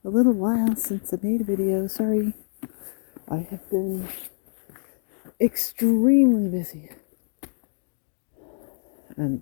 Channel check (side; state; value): right; silent; digital silence